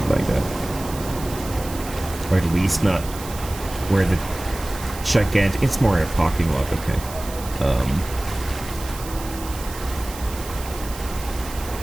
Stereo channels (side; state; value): right; noise; hiss, 13 dB below the sound